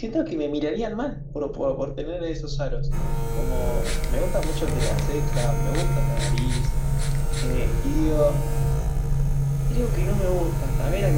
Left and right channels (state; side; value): identical; both; correlation 1.00